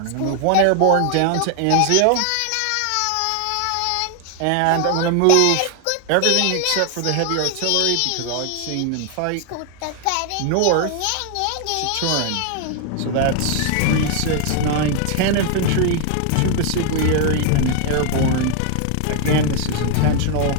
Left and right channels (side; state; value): both; different; correlation 0.00